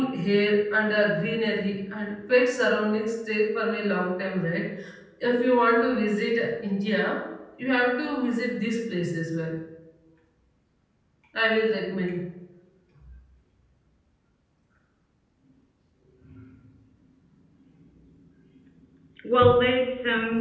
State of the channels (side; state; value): both; identical; correlation 1.00